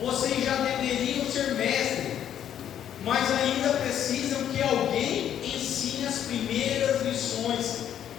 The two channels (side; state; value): right; quieter; 10.1 dB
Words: já deveriam ser mestres, mas ainda precisam que alguém ensine as primeiras lições